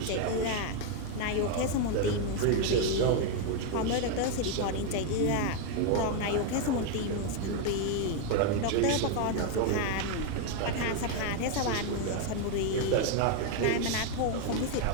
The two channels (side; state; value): both; different; correlation 0.01